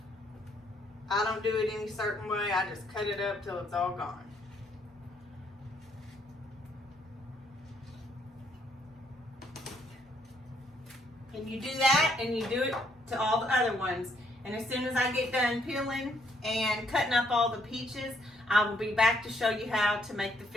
I don't do it any certain way. I just cut it up till it's all gone. And you do that and you do it to all the other ones. And as soon as I get done peeling and cutting up all the peaches, I will be back to show you how to make the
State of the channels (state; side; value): normal; both; correlation 0.70